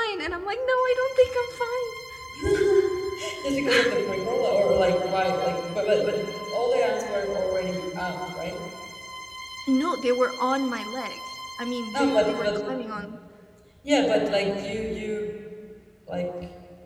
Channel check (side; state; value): both; identical; correlation 1.00